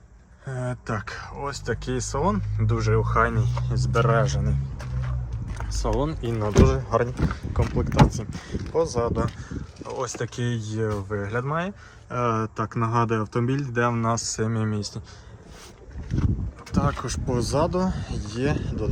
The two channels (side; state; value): both; identical; correlation 1.00